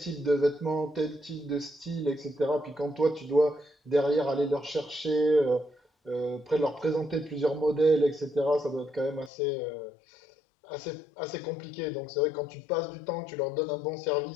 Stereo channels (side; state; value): right; drops out; at 9.3 s